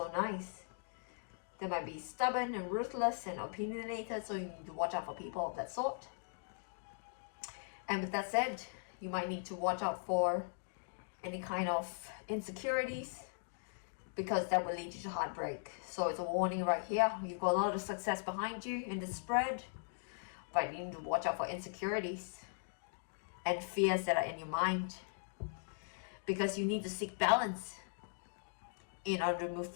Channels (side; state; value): right; silent; digital silence